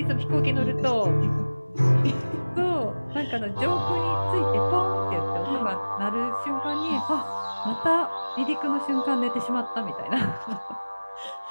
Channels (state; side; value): inverted; both; correlation -1.00